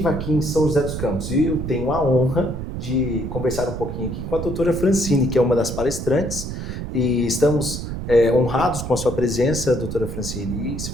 aqui em São José dos Campos. E eu tenho a honra de conversar um pouquinho aqui com a doutora Francine, que é uma das palestrantes, e estamos honrados com a sua presença, doutora Francine. E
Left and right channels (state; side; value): noise; right; rumble, 6 dB below the sound